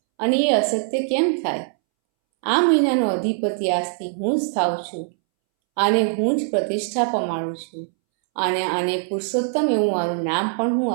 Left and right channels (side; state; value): left; silent; 64 dB below the other